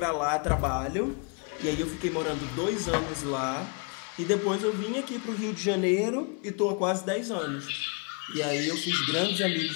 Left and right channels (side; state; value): right; quieter; 35.1 dB